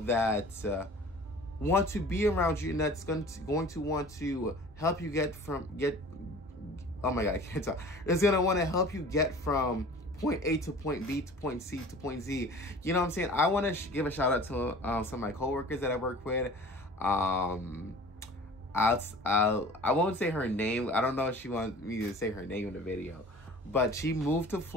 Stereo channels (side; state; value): both; normal; correlation 0.44